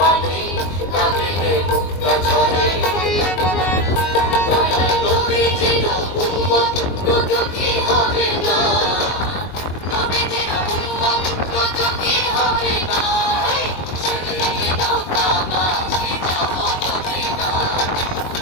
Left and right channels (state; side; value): late; right; 22 ms